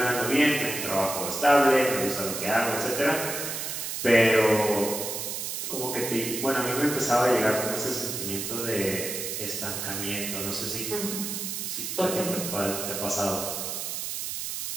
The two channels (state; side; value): noise; right; hiss, 4 dB below the sound